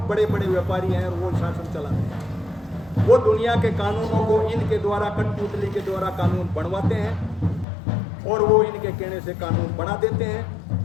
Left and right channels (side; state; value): right; drops out; at 7.7 s